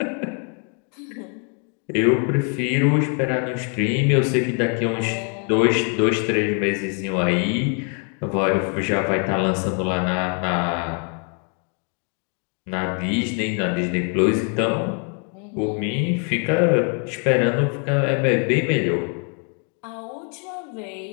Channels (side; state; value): right; quieter; 39.9 dB